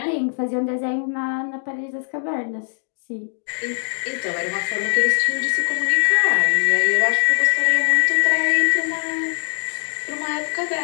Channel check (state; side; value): silent; right; digital silence